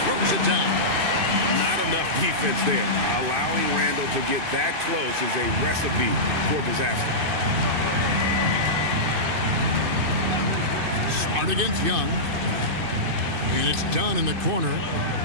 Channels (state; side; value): late; left; 2.6 ms